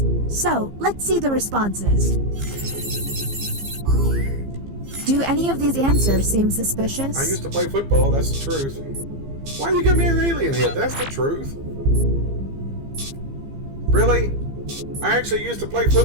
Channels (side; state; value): left; late; 15 ms